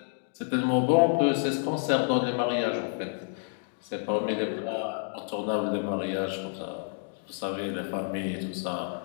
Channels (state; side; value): silent; right; digital silence